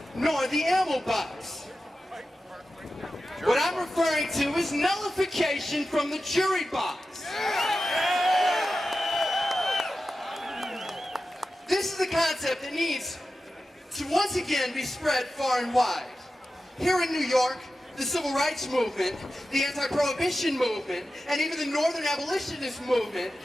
nor the ammo box. What I'm referring to is nullification from the jury box. This is a concept that needs to once again be spread far and wide. Here in New York, the civil rights movement, the anti-prohibition movement, and even the northern abolitionist movement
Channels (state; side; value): normal; both; correlation 0.92